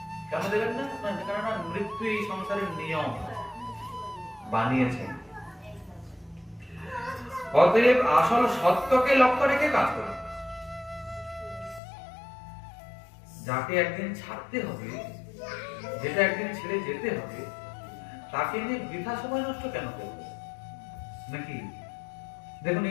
কেন দেবেন না? কারণ মৃত্যু এই সংসারের নিয়ম বানিয়েছেন। অতএব আসল সত্যকে লক্ষ্য রেখে কাজ করুন। যাকে একদিন ছাড়তে হবে, যেটা একদিন ছেড়ে যেতে হবে, তাকে নিয়ে বৃথা সময় নষ্ট কেন করবো নাকি? দেখুন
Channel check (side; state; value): right; drops out; at 11.8 s